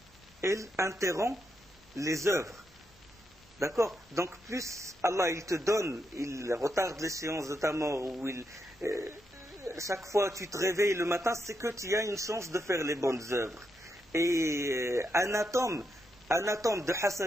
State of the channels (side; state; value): both; normal; correlation 0.82